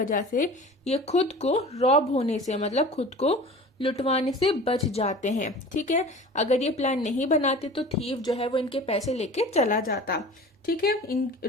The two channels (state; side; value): normal; both; correlation 0.40